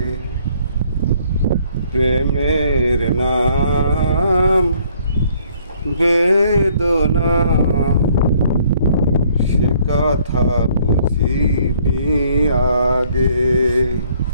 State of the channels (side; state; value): both; inverted; correlation -0.63